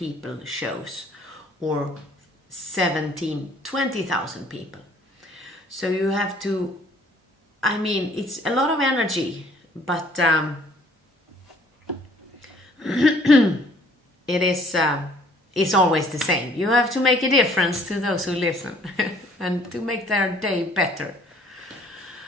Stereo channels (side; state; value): both; normal; correlation 0.58